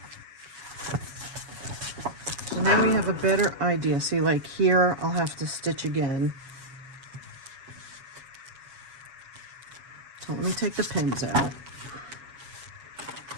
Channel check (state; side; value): late; left; 7.2 ms